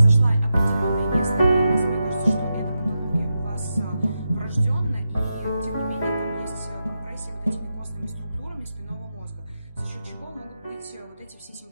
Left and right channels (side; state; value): both; inverted; correlation -0.89